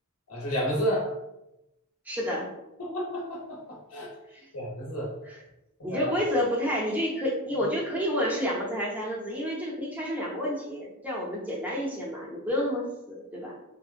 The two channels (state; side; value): normal; both; correlation 0.25